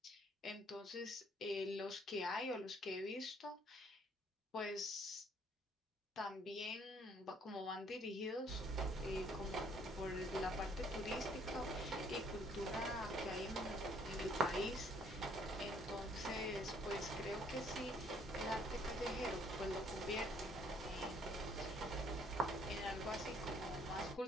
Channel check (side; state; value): both; normal; correlation 0.63